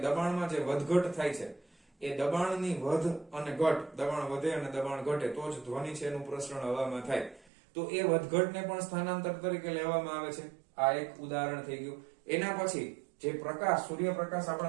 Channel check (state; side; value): drops out; left; at 7.5 s